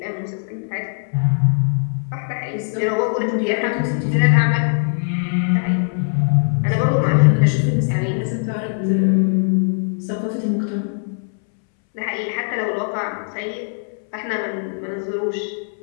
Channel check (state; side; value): silent; right; 65 dB below the other